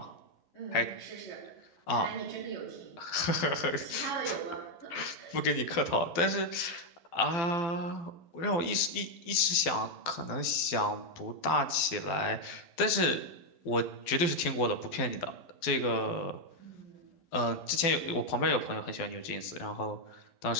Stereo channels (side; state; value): right; late; 12 ms